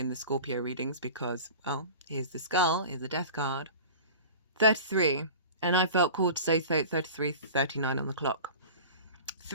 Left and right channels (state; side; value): inverted; both; correlation -0.37